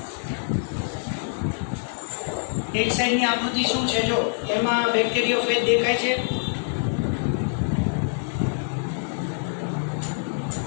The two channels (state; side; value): silent; right; 62 dB below the other